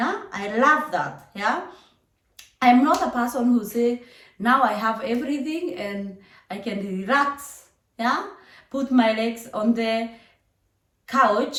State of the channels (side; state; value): both; identical; correlation 1.00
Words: I love that. Yeah, I'm not a person who say now I have everything and I can relax. Yeah, put my legs on the